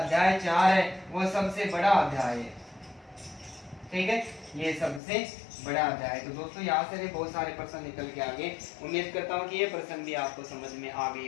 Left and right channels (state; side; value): drops out; right; at 5.0 s